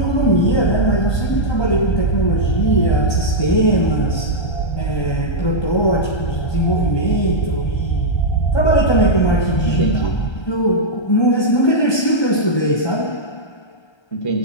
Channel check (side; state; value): right; late; 1.3 ms